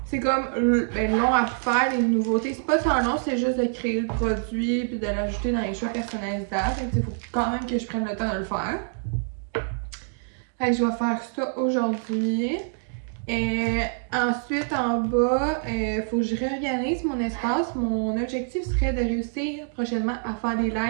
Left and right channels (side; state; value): left; silent; digital silence